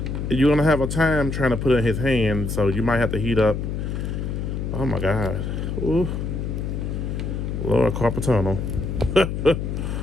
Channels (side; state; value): left; noise; hum, 3 dB below the sound